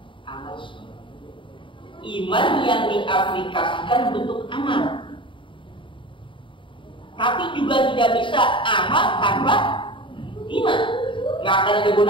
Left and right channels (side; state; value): right; late; 0.24 ms